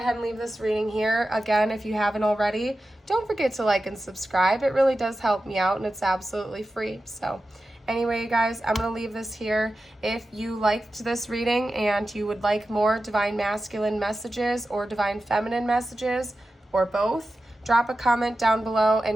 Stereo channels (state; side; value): normal; both; correlation 0.93